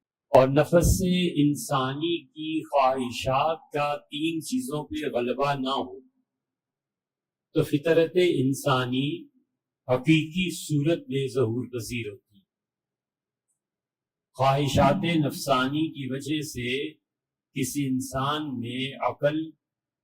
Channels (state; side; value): identical; both; correlation 1.00